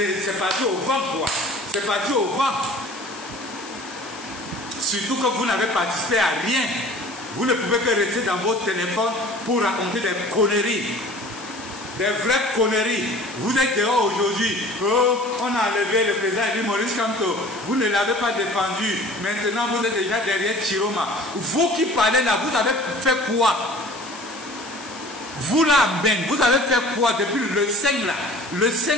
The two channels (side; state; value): left; noise; hiss, 16 dB below the sound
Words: parti au vent quoi. C'est parti au vent. Surtout que vous n'avez participé à rien. Vous ne pouvez que rester dans votre téléphone pour raconter des conneries. Des vraies conneries. Vous êtes dehors aujourd'hui. Oh, on a enlevé le président Eli Maurice Kamto. Vous ne l'avez pas défendu. Maintenant, vous êtes déjà derrière Chiroma. Vous qui parlez là, vous avez fait quoi? Vous là, Ben, vous avez fait quoi depuis le 5 là? Le